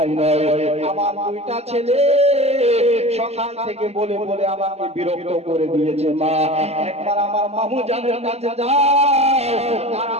নয়, আমার দুইটা ছেলে সকাল থেকে বলে বলে আমাকে বিরক্ত করে দিয়েছে। মা একবার আমার মামু জানের কাছে যাও আর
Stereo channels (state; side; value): late; left; 0.30 ms